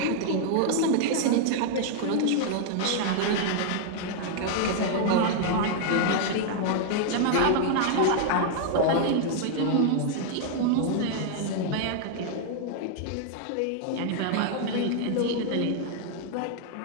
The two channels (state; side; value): different; both; correlation 0.00